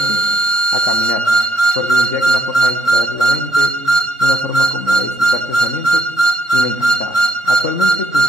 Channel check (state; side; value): late; right; 3.6 ms